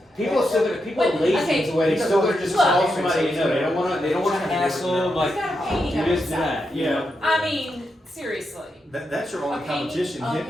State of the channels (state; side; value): normal; both; correlation 0.85